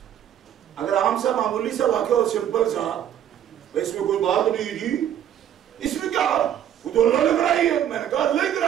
اگر عام سا معمولی سا واقعہ اور سمپل سا، اس میں کوئی بات نہیں جی، اس میں کیا وہ تو اللہ نے کرائی ہے. میں نے کہا اللہ نے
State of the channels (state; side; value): quieter; left; 10.4 dB